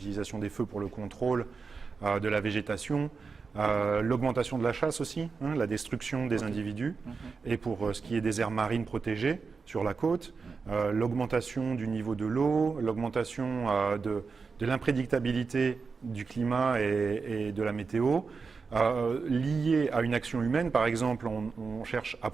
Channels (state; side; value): quieter; left; 4.9 dB